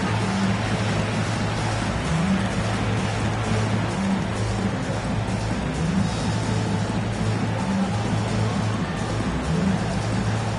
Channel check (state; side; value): identical; both; correlation 1.00